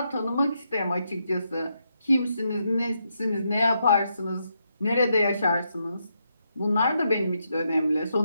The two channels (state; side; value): inverted; both; correlation -0.80